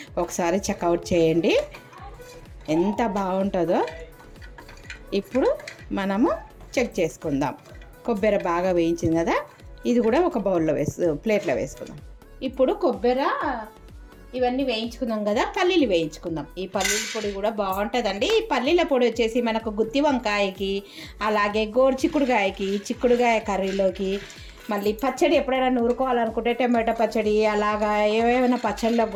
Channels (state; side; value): identical; both; correlation 1.00